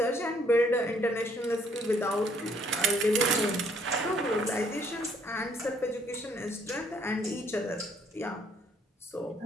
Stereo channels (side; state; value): both; normal; correlation 0.65